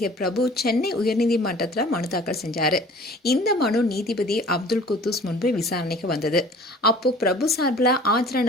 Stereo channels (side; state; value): both; normal; correlation 0.47